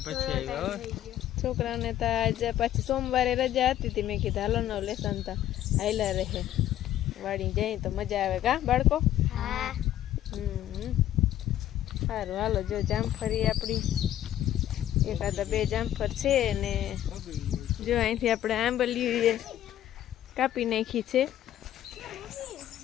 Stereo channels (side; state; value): right; quieter; 12.2 dB